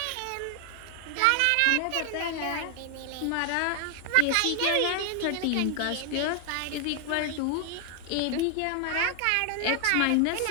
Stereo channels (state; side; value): different; both; correlation 0.00